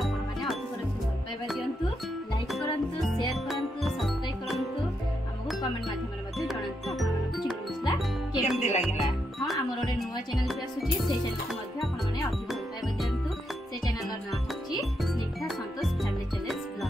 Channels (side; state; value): both; normal; correlation 0.81